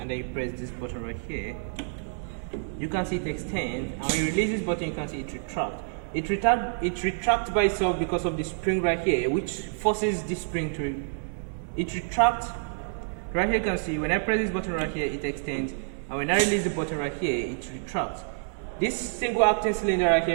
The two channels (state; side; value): silent; left; 59 dB below the other